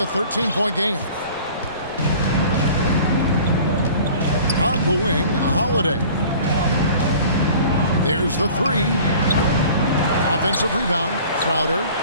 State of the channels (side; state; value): both; inverted; correlation -0.46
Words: 13-point game. On the wing, Holiday. There's the three. Offensive rebound. Crowder